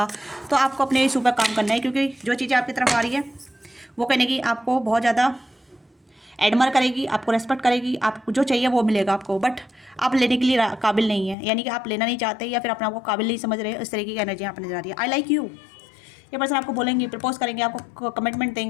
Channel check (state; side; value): drops out; right; at 11.4 s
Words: तो आपको अपने इस ऊपर काम करना है, क्योंकि जो चीज़ें आपकी तरफ आ रही है वो कहने की आपको बहुत ज़्यादा एडमर करेगी, आपको रेस्पेक्ट करेगी, आपको जो चाहिए वो मिलेगा आपको, बट आप लेने के लिए काबिल नहीं है, यानी कि आप लेना नहीं चाहते या फिर अपने आप को काबिल नहीं समझ रहे। इस तरीके की एनर्जी यहाँ पर नजर आ रही है। आई लाइक यू, ये पर्सन आपको बोलेंगे, प्रपोज करेंगे, आपको कमिटमेंट